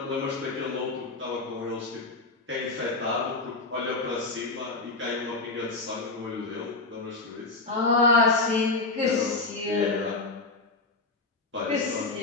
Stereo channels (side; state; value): right; quieter; 3.5 dB